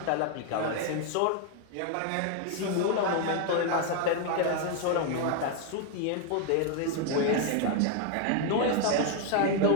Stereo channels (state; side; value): different; both; correlation 0.00